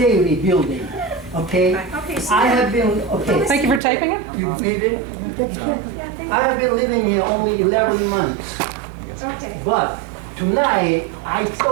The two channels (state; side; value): drops out; left; at 3.8 s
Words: building, okay? Okay, so. I have been, okay. Thank you for taping it. You need it? Yeah, thank I have been living here only 11 months, Okay. But tonight, I